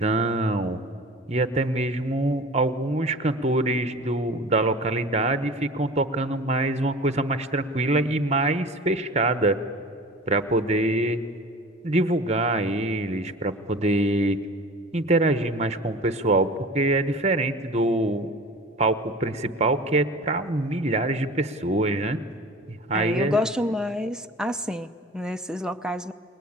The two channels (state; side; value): normal; both; correlation 0.39